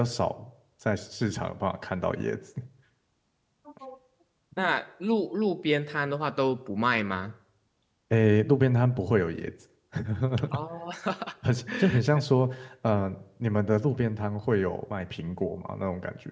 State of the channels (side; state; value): both; identical; correlation 1.00